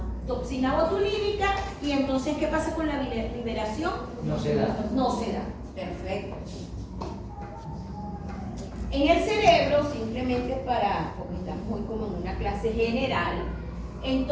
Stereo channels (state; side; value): identical; both; correlation 1.00